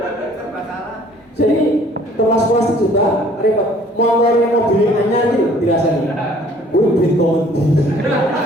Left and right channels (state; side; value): normal; both; correlation 0.55